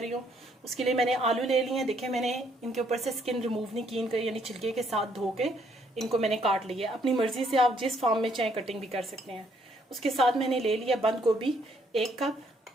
हूँ। उसके लिए मैंने आलू ले लिए हैं। देखिए मैंने इनके ऊपर से स्किन रिमूव नहीं की, इनका यानी छिलके के साथ धो के इनको मैंने काट लिया। अपनी मर्जी से आप जिस फॉर्म में चाहे कटिंग भी कर सकते हैं। उसके साथ मैंने ले लिया बंद गोभी 1 कप,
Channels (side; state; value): both; normal; correlation 0.69